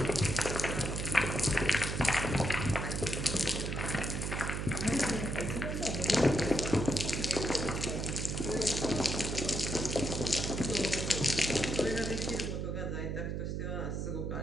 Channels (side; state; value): right; noise; hum, 2 dB below the sound